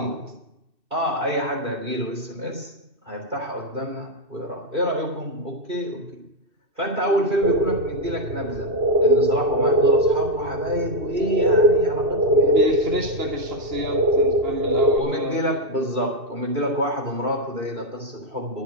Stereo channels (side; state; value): left; late; 2.6 ms